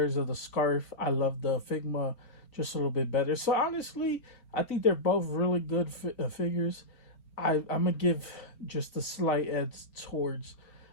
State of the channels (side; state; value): right; late; 4.4 ms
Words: of the scarf. I love the Figma just a little bit better. So honestly, I think they're both really good figures. I'm gonna give just a slight edge towards